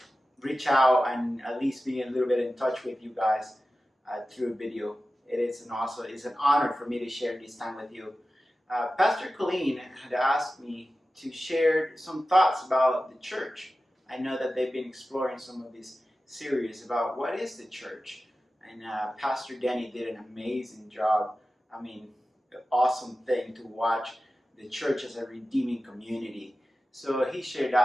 reach out and at least be a little bit in touch with you guys through video. It's an honor for me to share this time with you. Pastor Colleen had asked me to share some thoughts about the church. I know that they've been exploring some of these series about what is the church, and Pastor Denny did an amazing job. I mean, an awesome thing to watch the church as a redeeming community. So he shared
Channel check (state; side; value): normal; both; correlation 0.94